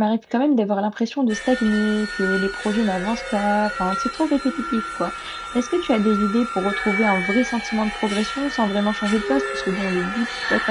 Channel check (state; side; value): identical; both; correlation 1.00